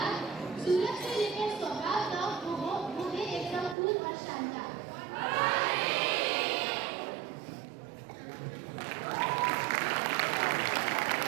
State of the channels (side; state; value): left; drops out; at 3.8 s